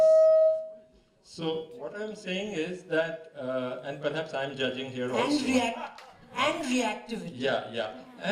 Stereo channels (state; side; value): identical; both; correlation 1.00